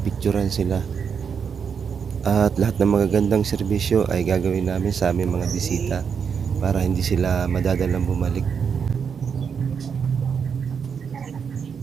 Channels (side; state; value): left; quieter; 6.7 dB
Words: sila. At lahat ng magagandang serbisyo ay gagawin namin sa aming mga bisita para hindi sila madadalang bumalik.